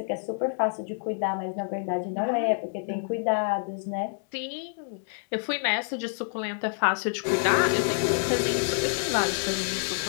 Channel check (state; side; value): silent; right; digital silence